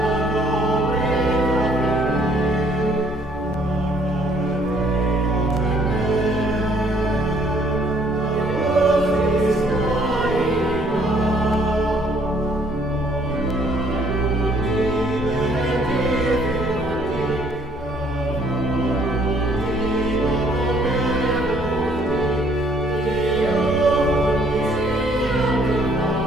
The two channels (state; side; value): normal; both; correlation 0.63